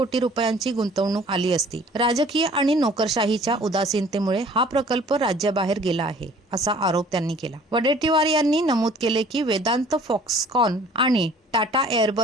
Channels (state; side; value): normal; both; correlation 0.52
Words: रुपयांची गुंतवणूक आली असती। राजकीय आणि नोकरशाहीच्या उदासीनतेमुळे हा प्रकल्प राज्याबाहेर गेला आहे असा आरोप त्यांनी केला। वडेट्टीवार यांनी नमूद केले की वेदांत, फॉक्सकॉन आणि टाटा